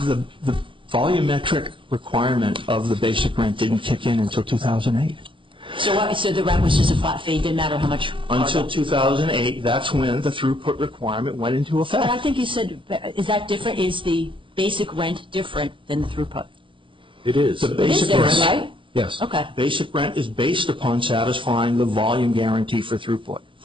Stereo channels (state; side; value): late; left; 0.25 ms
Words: volumetric requirement of the basic rent didn't kick in until 2008. So the rent was just a flat fee, didn't matter how much Until 2008, that's when the throughput requirement went into effect. But I think you said, is that different? Is the basic rent different than the throughput? It is. The It is basic different, rent, right? Yes. Okay. Basic rent is based upon satisfying the volume guarantee for throughput.